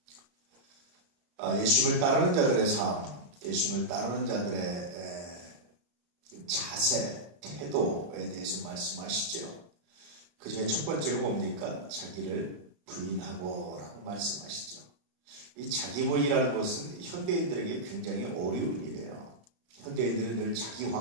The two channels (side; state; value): left; late; 34 ms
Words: 예수님을 따르는 자들의 삶, 예수님을 따르는 자들의 자세, 태도에 대해서 말씀하시죠. 그 중에 첫 번째가 뭡니까? 자기를 부인하고 라고 말씀하시죠. 이 자기 부인이라는 것은 현대인들에게 굉장히 어려운 일이에요. 현대인들은 늘 자기